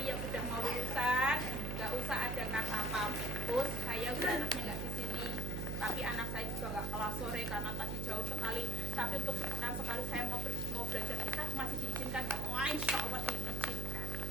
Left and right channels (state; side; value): noise; right; hum, 1 dB below the sound